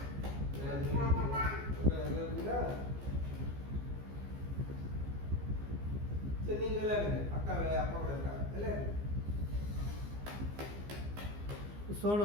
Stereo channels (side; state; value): left; late; 15 ms